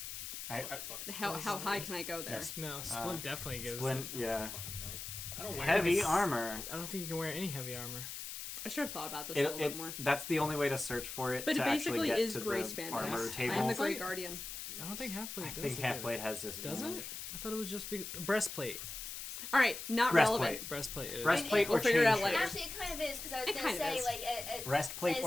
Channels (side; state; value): left; noise; hiss, 8 dB below the sound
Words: How high can I go there? Yes. No, Splint definitely gives Splint, it. yeah. I don't wear Heavy this. armor. I don't think you can wear any heavy armor. I should have thought about this a little bit more. That's the only way to search for it. But to it basically actually get is to Grey the Span. armor Yes. table. I am the Grey Guardian. I don't think Halfblade I does. think it. Halfblade has this. Does it? advantage. I thought it was just breastplate. All right, not Breastplate. relevant. Breastplate. Is. Breastplate We'll or figure it chain out later. shirt. Actually, it kind of is because I was It gonna kind of say is. like Breastplate as,